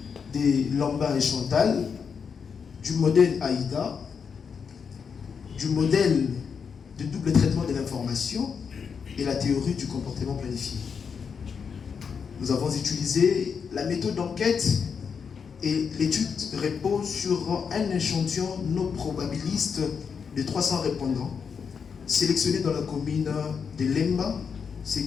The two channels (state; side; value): quieter; right; 6.3 dB